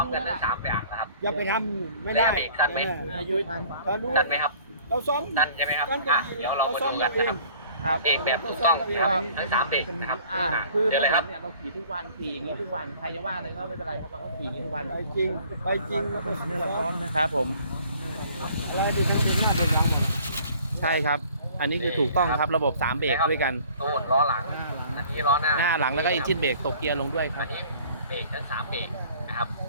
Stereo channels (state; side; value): inverted; both; correlation -0.52